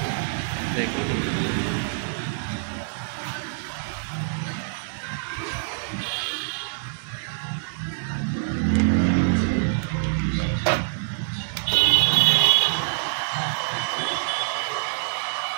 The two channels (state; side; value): silent; left; digital silence